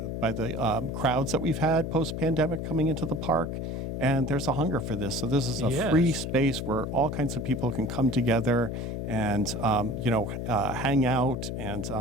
crowds that we've had post-pandemic coming into the park, and there's a hunger for this. So this is a free space where all kinds of people can come together and hang out and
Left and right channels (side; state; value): left; noise; hum, 4 dB below the sound